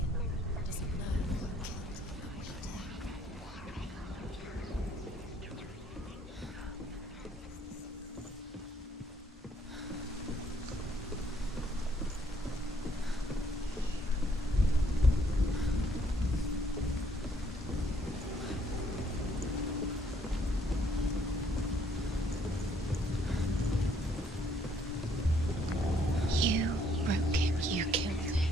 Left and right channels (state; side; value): normal; both; correlation 0.67